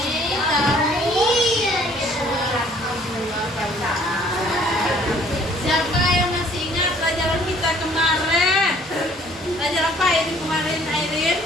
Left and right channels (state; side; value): normal; both; correlation 0.57